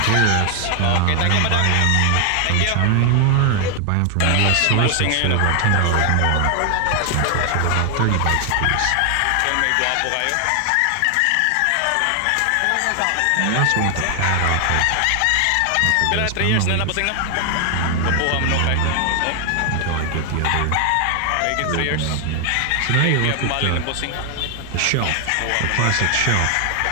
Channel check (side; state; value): both; different; correlation 0.00